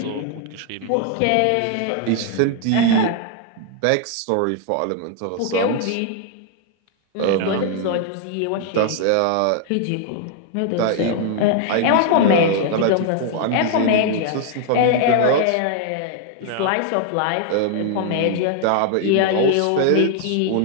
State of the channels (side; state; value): both; different; correlation 0.00